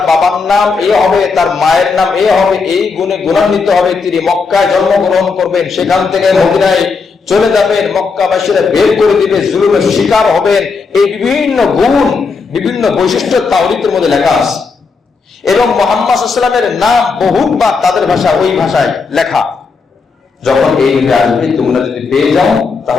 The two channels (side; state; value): right; quieter; 4.8 dB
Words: বাবার নাম এ হবে, তার মায়ের নাম এ হবে, এই গুণে গুণান্বিত হবে, তিনি মক্কায় জন্মগ্রহণ করবেন, সেখান থেকে মদিনায় চলে যাবেন, মক্কাবাসীরা বের করে দিবে, জুলুমের শিকার হবেন, এই বিভিন্ন গুণ, বিভিন্ন বৈশিষ্ট্য তাওরীতের মধ্যে লেখা আছে। এবং মুহাম্মদ সাল্লাল্লাহু আলাইহি ওয়াসাল্লামের নাম বহুবার তাদের ভাষা, ওই ভাষায় লেখা। যখন এই নবী আসবে, তোমরা যদি পেয়ে যাও,